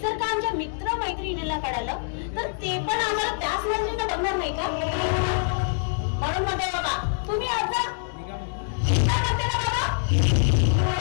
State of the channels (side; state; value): right; silent; 62 dB below the other